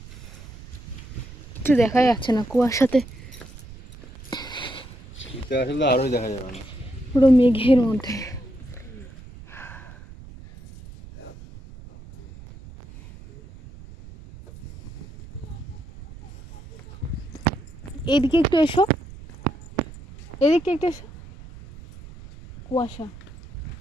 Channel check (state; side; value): noise; right; rumble, 16 dB below the sound